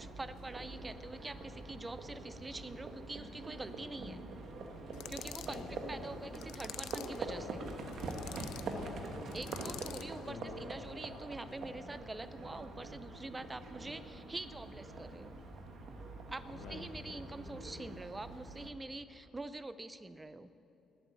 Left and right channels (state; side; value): normal; both; correlation 0.78